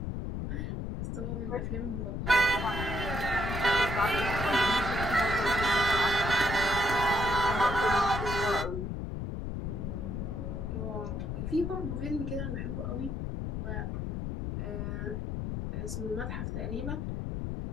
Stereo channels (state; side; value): noise; left; rumble, 3 dB below the sound